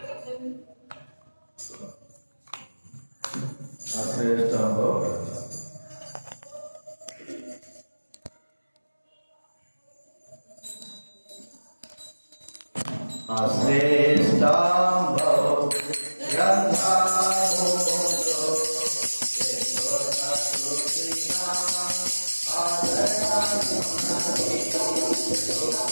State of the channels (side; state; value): both; inverted; correlation -1.00